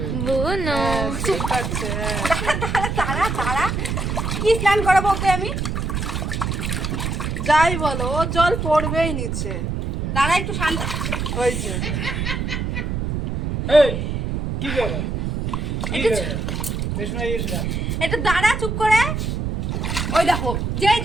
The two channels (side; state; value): right; noise; rumble, 2 dB below the sound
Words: দাঁড়া দাঁড়া, কি স্নান করাবো ওকে আমি? যাই বলো, ও জল পড়বেই নিচে। দাঁড়া একটু শান্ত। ওই যে এই কি করে কি করে বেশ না ইস না একটু দাঁড়া চুপ করে। ওই দেখো যে